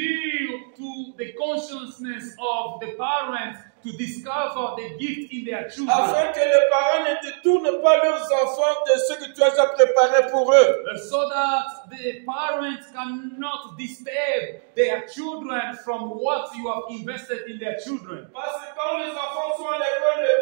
to the consciousness of the parents to discover the gift in their children, Afin que les parents ne détournent pas leurs enfants de ce que tu as déjà préparé pour eux. so that the parents cannot disturb their children from what you have invested in their children. Parce que quand les enfants sont à l'école,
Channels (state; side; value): silent; left; digital silence